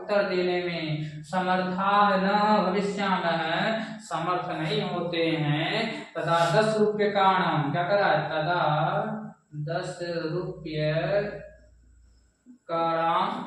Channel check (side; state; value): both; identical; correlation 1.00